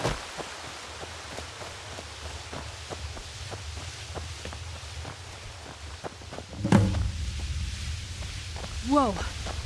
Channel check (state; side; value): identical; both; correlation 1.00